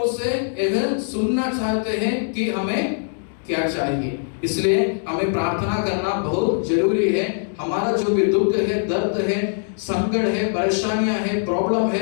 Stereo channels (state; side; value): silent; right; digital silence